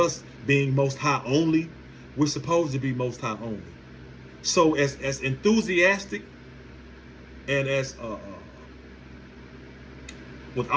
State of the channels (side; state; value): both; identical; correlation 1.00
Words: being Most High only. We're supposed to be Most High only. So as enthusiastic and as with